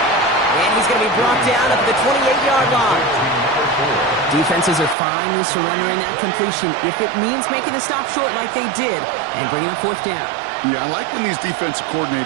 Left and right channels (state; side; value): drops out; left; at 5.0 s